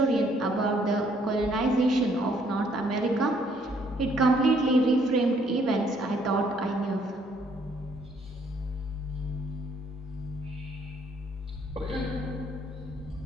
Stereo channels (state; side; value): normal; both; correlation 0.66